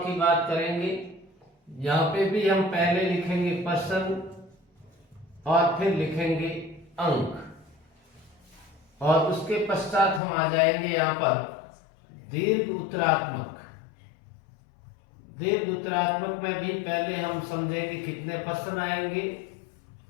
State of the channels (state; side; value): drops out; right; at 10.2 s